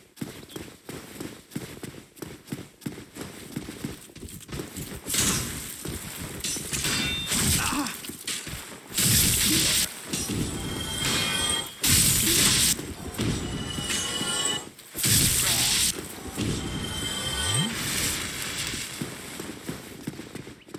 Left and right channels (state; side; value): identical; both; correlation 1.00